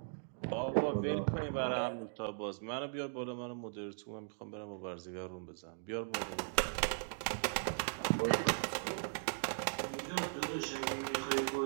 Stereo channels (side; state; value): left; silent; digital silence